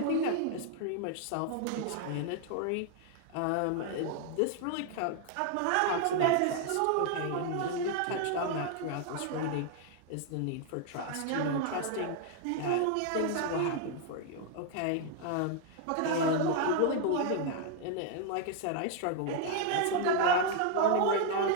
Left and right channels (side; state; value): both; different; correlation 0.00